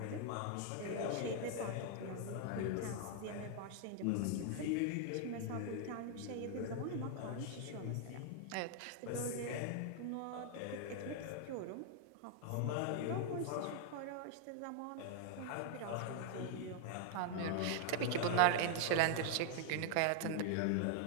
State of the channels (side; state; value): both; different; correlation 0.00